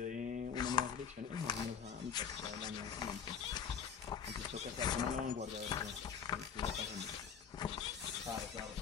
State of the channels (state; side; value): quieter; right; 7.3 dB